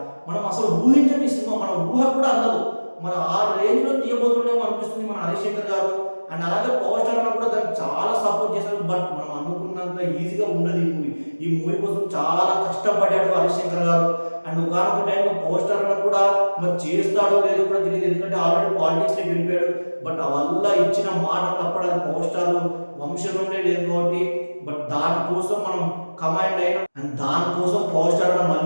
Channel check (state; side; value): inverted; both; correlation -1.00